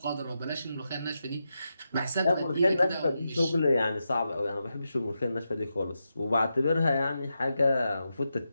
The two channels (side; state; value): both; inverted; correlation -0.87